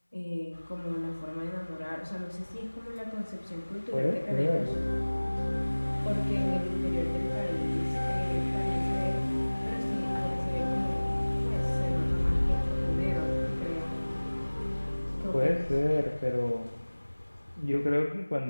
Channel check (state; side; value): inverted; both; correlation -1.00